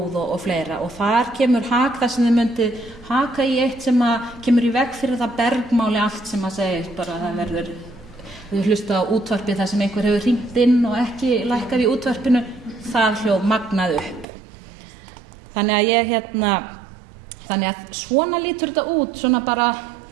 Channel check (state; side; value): drops out; left; at 14.2 s